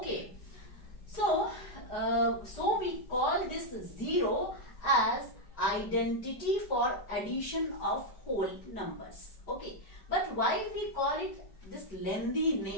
So we call this 0 as identity for addition of whole numbers. Okay. But why we call it this lengthy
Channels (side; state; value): right; late; 5.0 ms